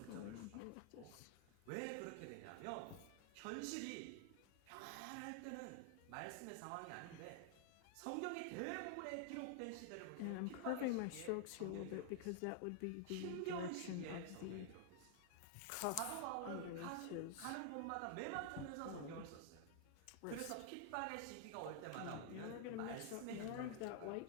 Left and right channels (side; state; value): both; different; correlation 0.00